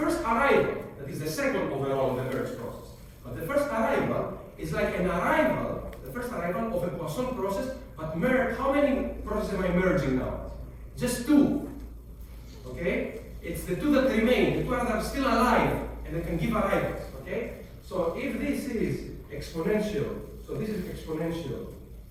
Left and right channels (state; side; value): identical; both; correlation 1.00